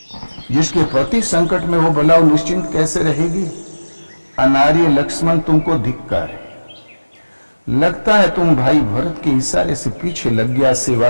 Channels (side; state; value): both; inverted; correlation -1.00